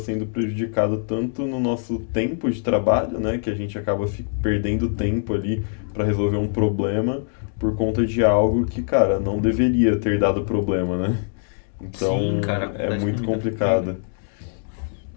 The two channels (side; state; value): right; silent; 63 dB below the other